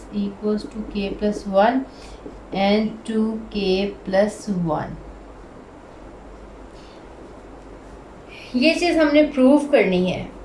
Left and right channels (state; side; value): identical; both; correlation 1.00